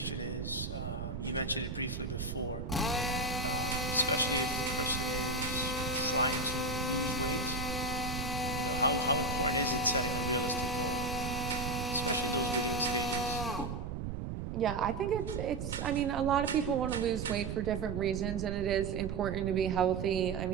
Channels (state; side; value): noise; right; rumble, 4 dB below the sound